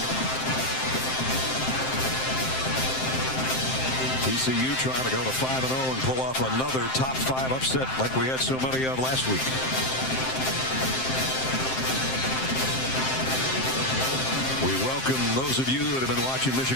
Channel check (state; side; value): late; right; 7.7 ms